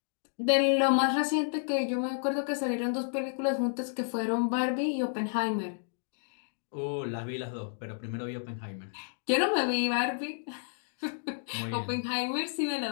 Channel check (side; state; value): right; silent; digital silence